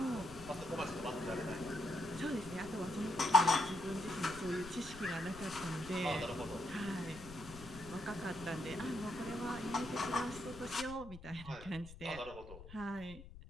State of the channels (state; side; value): noise; left; rumble, 15 dB below the sound